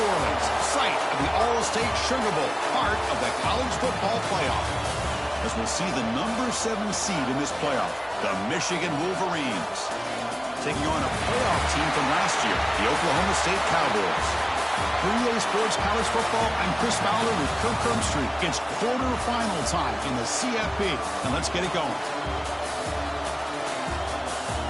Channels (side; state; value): both; identical; correlation 1.00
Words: Orleans, site of the All-State Sugar Bowl, part of the college football playoff. As we'll see the number 7 seed in this playoff, the Michigan Wolverines, taking on a playoff team from last year, the Oklahoma State Cowboys. For EA Sports College Football, I'm Chris Fowler with Kirk Herbstreit. It's quarterfinal time in the CFP, and let's get it going.